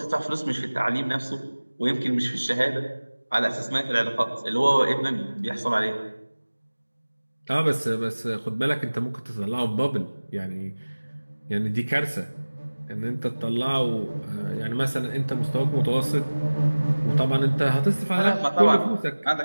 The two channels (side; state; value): both; inverted; correlation -1.00